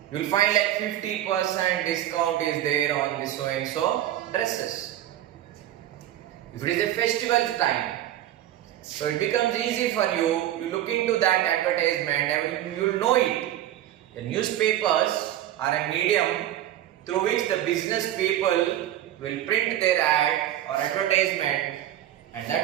You will find like 50% discount is there on this so and so dresses. If it is a festival time, so it becomes easy for you to look into that advertisement and you will know it. The newspapers are a medium through which the business people will print their ad or advertisement, and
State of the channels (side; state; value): left; quieter; 12.7 dB